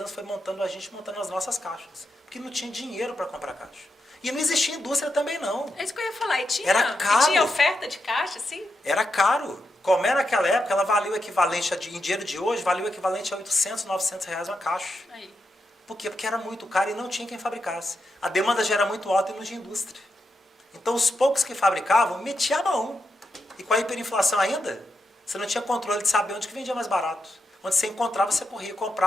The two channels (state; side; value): normal; both; correlation 0.85